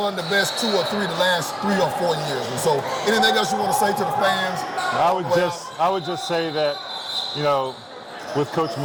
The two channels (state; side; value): identical; both; correlation 1.00